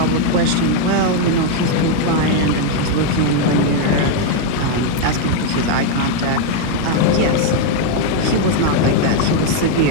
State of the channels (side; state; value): both; different; correlation 0.01